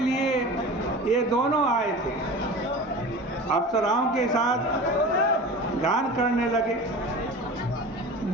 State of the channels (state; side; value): normal; both; correlation 0.35